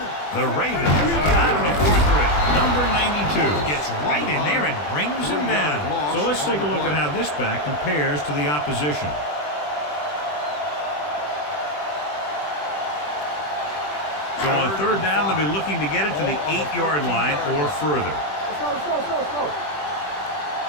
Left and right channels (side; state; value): right; late; 20 ms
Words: The Ravens come out on a 4-3. Number 92 gets right in there and brings him down. So let's take a look at how this back compares to the opposition. So on third down, they'll be looking to get it to the 8-yard line or further. Let's go.